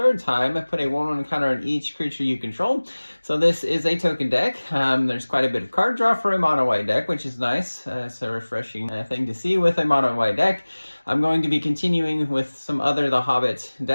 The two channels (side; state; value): both; inverted; correlation -1.00